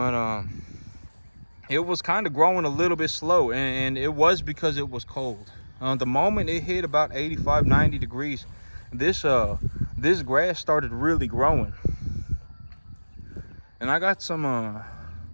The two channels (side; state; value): both; inverted; correlation -1.00